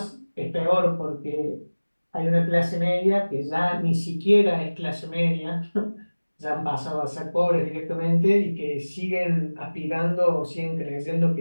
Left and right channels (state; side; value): inverted; both; correlation -1.00